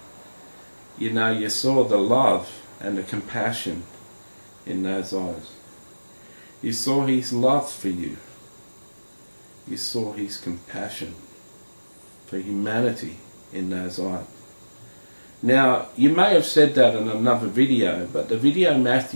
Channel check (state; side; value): inverted; both; correlation -1.00